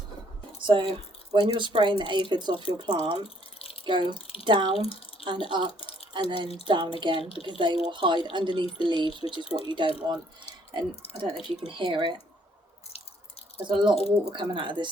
So when you're spraying the aphids off your plant, go down and up and then down again, because they will hide underneath the leaves, which is what you don't want. And I don't know if you can hear it, there's a lot of water coming out of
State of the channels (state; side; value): normal; both; correlation 0.65